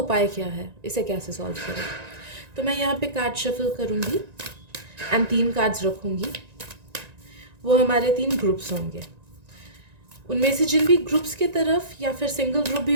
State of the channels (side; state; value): left; late; 1.9 ms